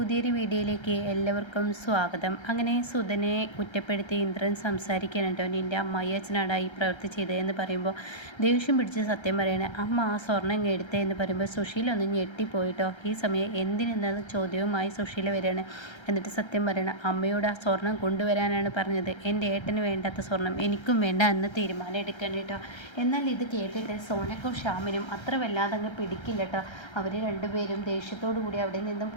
വീഡിയോയിലേക്ക് എല്ലാവർക്കും സ്വാഗതം. അങ്ങനെ സുധനെ കുറ്റപ്പെടുത്തി ഇന്ദ്രൻ സംസാരിക്കണം കേട്ടോ. നിൻ്റെ അമ്മായി അച്ഛനാടാ ഈ പ്രവൃത്തി ചെയ്തതെന്ന് പറയുമ്പോൾ ദേഷ്യം പിടിച്ച് സത്യം പറയണേ. അമ്മ ആ സ്വർണ്ണം എടുത്തേ എന്ന് പറയുമ്പോൾ സുശീല ഒന്ന് ഞെട്ടിപ്പോയിട്ടോ. ഈ സമയം എന്തിനെന്ന ചോദ്യവുമായി സുശീല വരികയാണ്. എന്നിട്ട് സത്യം പറയണം, അമ്മയോട് ആ സ്വർണം കൊണ്ടുവരാനാണ് പറഞ്ഞത്. എൻ്റെ ഏട്ടന് വേണ്ടാത്ത സ്വർണം എനിക്കും വേണ്ട എന്ന് തീരുമാനം എടുക്കണം കേട്ടോ. എന്നാൽ ഇത് കേട്ടിട്ട് സോനക്കും ഷ്യാമിനും അത്ര വല്ലാതെ അങ്ങ് പിടിക്കില്ല കേട്ടോ. അവർ രണ്ടുപേരും ദേഷ്യത്തോടു കൂടി അവിടെ നിന്നും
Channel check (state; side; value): late; right; 1.3 ms